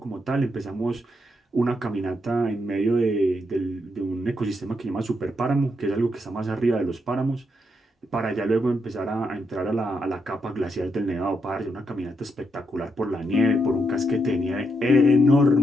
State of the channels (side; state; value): both; normal; correlation 0.80